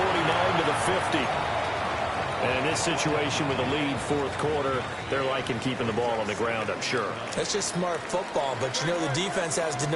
to the 50. And in this situation with a lead fourth quarter, they're liking keeping the ball on the ground, I'm sure. That's just smart football, but you know the defense has to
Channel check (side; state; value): both; identical; correlation 1.00